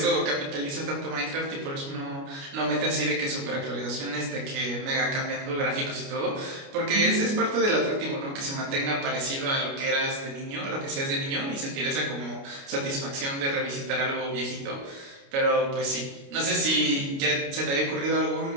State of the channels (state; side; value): late; left; 29 ms